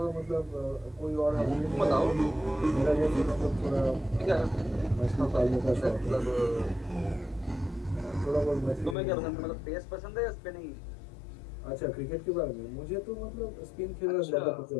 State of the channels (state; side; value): drops out; right; at 9.0 s